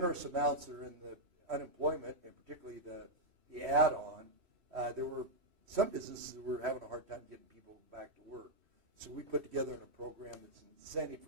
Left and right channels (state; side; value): late; left; 3.1 ms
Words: amounts that are in the unemployment, and particularly the add-on, there were some businesses that were having a hard time getting people back to work. So we put together a program that's an incentive